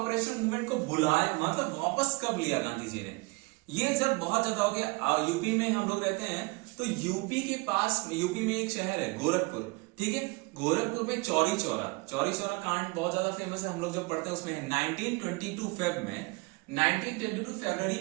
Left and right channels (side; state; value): left; quieter; 27.0 dB